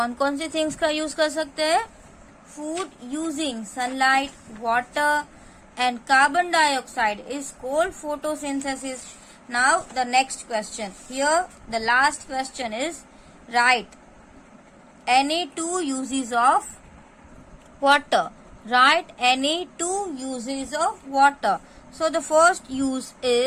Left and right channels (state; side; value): identical; both; correlation 1.00